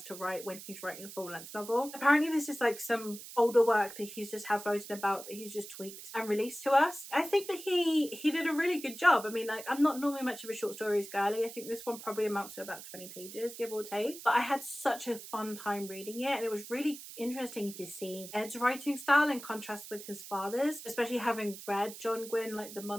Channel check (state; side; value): noise; right; hiss, 13 dB below the sound